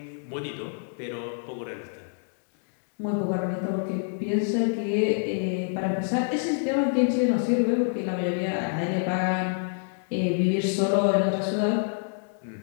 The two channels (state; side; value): silent; right; digital silence